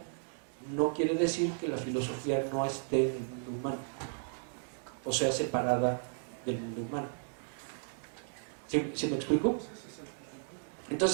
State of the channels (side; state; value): left; silent; digital silence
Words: no quiere decir que la filosofía no esté en el mundo humano, o sea, separada del mundo humano. ¿Sí me explico?